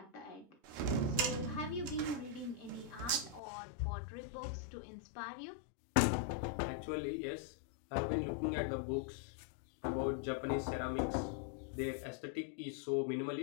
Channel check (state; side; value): drops out; right; at 3.4 s